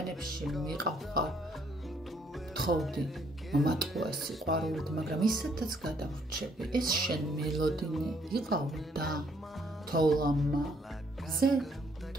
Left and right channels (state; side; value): normal; both; correlation 0.68